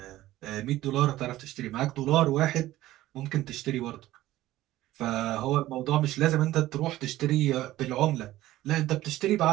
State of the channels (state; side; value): quieter; left; 15.5 dB